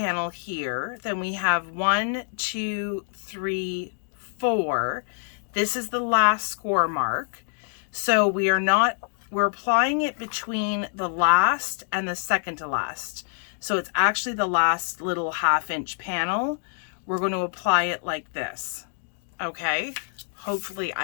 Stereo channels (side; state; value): right; silent; digital silence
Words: here. Then we have 1, 2, 3, 4. This is the last score mark. So we're applying it between the last and the second to last. So it's actually the last little 1/2 inch panel. We're going to apply it like this. Okay. Hopefully